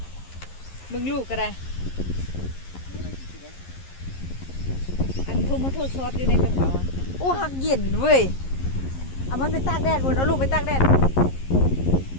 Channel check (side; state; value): right; late; 11 ms